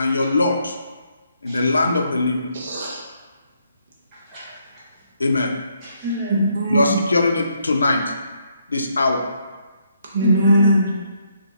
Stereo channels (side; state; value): both; inverted; correlation -0.74